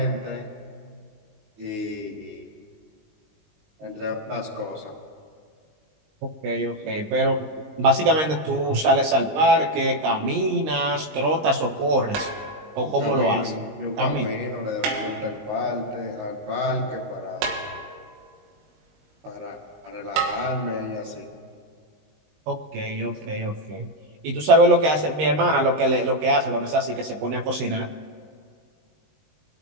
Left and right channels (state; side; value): late; left; 19 ms